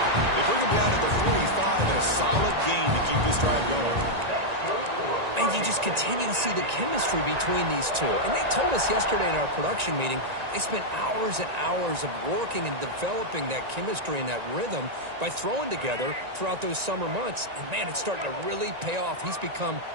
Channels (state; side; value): late; left; 1.9 ms